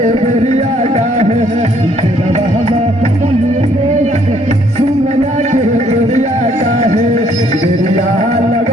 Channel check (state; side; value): normal; both; correlation 0.65